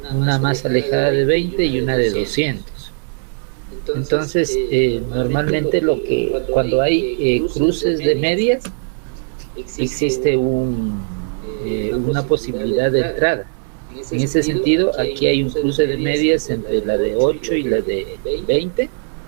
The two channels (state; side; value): silent; left; digital silence